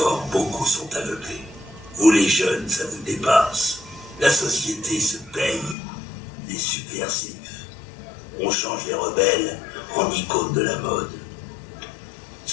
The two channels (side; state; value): right; drops out; at 5.8 s